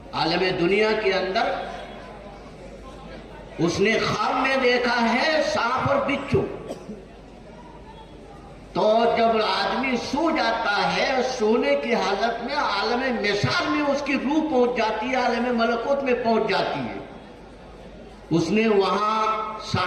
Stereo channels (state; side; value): identical; both; correlation 1.00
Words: عالم دنیا کے اندر اس نے خواب میں دیکھا ہے سانپ اور بچھو. تو جب آدمی سو جاتا ہے، سونے کی حالت میں عالم مثال میں اس کی روح پہنچ جاتی ہے، عالم ملکوت میں پہنچ جاتی ہے. اس نے وہاں